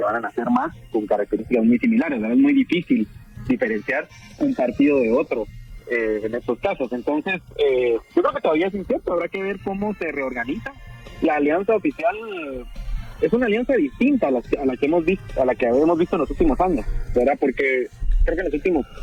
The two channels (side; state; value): both; identical; correlation 1.00